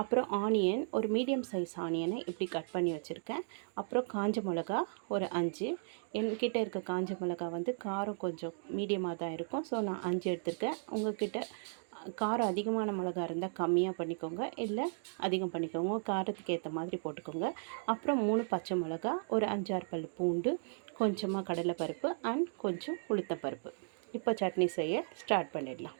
அப்புறம் ஆனியன், ஒரு மீடியம் சைஸ் ஆனியனை இப்படி கட் பண்ணி வச்சுருக்கேன். அப்புறம் காஞ்ச மிளகா ஒரு 5. என்கிட்ட இருக்க காஞ்ச மிளகா காரம் கொஞ்சம் மீடியமாக தான் இருக்கும். ஸோ நான் 5 எடுத்துருக்கேன். உங்கள்கிட்ட காரம் அதிகமான மிளகா இருந்தால் கம்மியாக பண்ணிக்கோங்க, இல்லை அதிகம் பண்ணிக்கோங்க. உங்கள் காரத்துக்கு ஏற்ற மாதிரி போட்டுக்கோங்க. அப்புறம் 3 பச்சை மிளகா, ஒரு 5-6 பல் பூண்டு, கொஞ்சமாக கடலைப்பருப்பு அண்ட் கொஞ்சம் உளுத்தப்பருப்பு. இப்போ சட்னி செய்ய ஸ்டார்ட் பண்ணிடலாம்.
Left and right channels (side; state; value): left; silent; digital silence